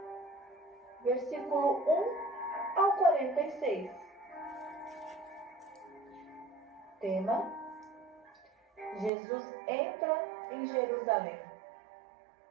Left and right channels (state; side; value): drops out; left; at 9.1 s